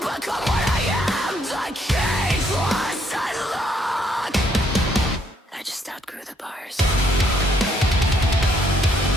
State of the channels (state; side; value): normal; both; correlation 0.69